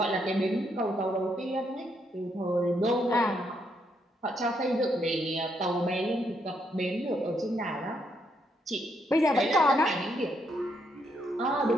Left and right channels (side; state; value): both; normal; correlation 0.76